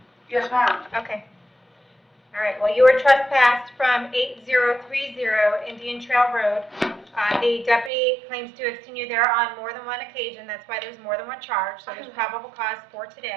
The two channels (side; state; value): left; drops out; at 7.9 s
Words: Yes, ma'am. Okay. All right. Well, you were trespassed from 8030 Indian Trail Road. The deputy claims to have seen you there on more than one occasion. That's why there's more than one charge. So there's probable cause for